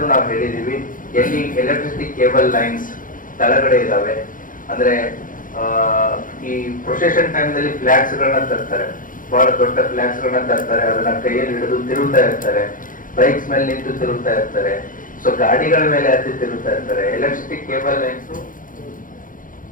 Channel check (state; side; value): late; right; 0.39 ms